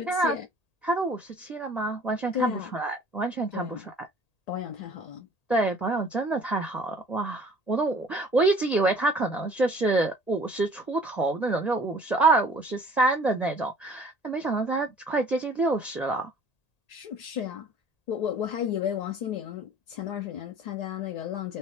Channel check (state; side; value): late; right; 1.8 ms